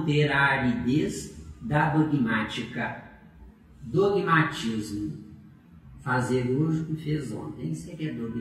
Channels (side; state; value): both; identical; correlation 1.00